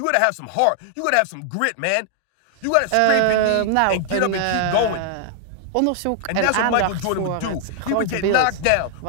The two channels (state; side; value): different; both; correlation 0.00